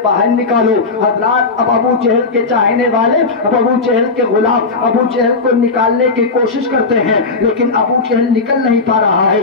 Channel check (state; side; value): quieter; right; 4.0 dB